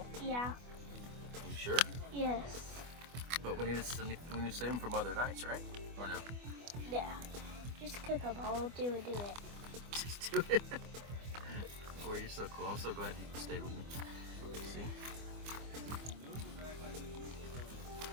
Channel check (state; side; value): late; left; 25 ms